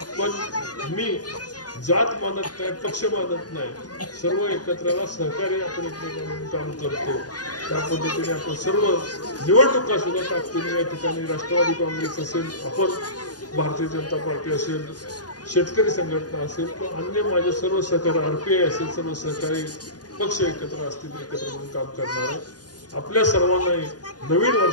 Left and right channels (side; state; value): right; late; 0.69 ms